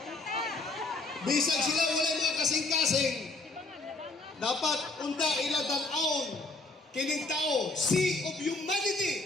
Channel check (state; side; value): quieter; right; 3.2 dB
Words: Bisag sila wala mga kasing-kasing, dapat unda iladanaon kining tao, sea of